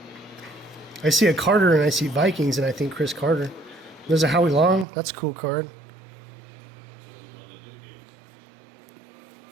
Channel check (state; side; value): drops out; left; at 4.9 s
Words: I see a Carter and I see Vikings and I think Chris Carter. There's a Howie Long. That's a cool card.